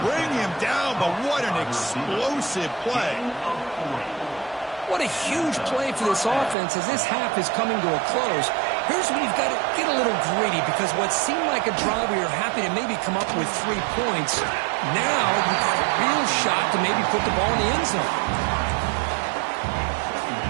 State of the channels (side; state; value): left; drops out; at 6.6 s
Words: bring him down, but what an explosive play. What a huge play for this offense as this half is coming to a close. Here's where you've got to get a little greedy, because what seemed like a drive where you're happy to maybe come up with 3 points, now you've got a real shot to maybe put the ball in the end zone.